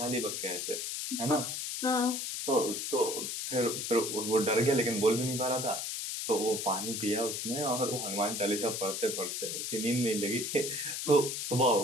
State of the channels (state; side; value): noise; left; hiss, 3 dB below the sound